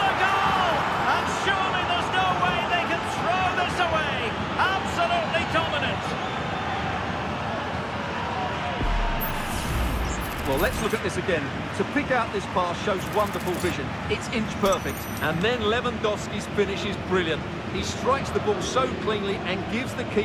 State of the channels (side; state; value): both; identical; correlation 1.00